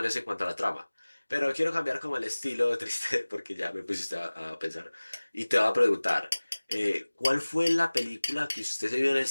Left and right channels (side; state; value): both; inverted; correlation -1.00